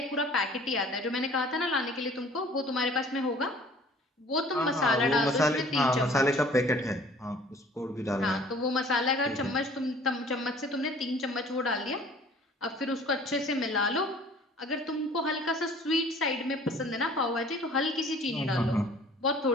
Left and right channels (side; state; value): both; normal; correlation 0.51